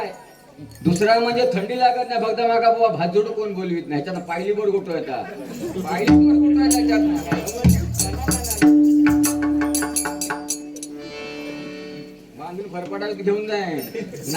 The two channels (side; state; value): both; identical; correlation 1.00